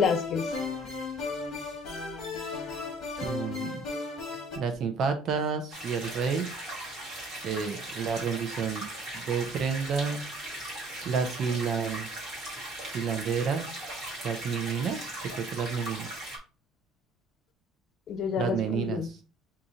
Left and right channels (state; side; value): normal; both; correlation 0.55